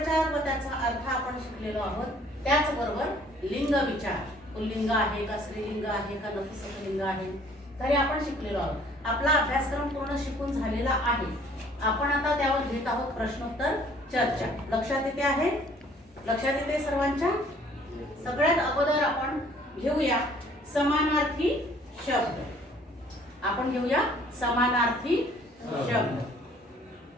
व त्याचा अर्थ आपण शिकलेलो आहोत. त्याचबरोबर लिंग विचार, पुल्लिंग आहे का, स्त्रीलिंग आहे का, नपुंसकलिंग आहे, तरी आपण शिकलेलो आहोत. आपला अभ्यासक्रम पूर्ण शिकून झालेला आहे. आपण आता त्यावर घेत आहोत प्रश्नोत्तर चर्चा. लक्षात येते आहे? लक्षात येते सर्वांच्या? सगळ्यात अगोदर आपण घेऊया समानार्थी शब्द. आपण घेऊया समानार्थी शब्द.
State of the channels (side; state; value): both; normal; correlation 0.57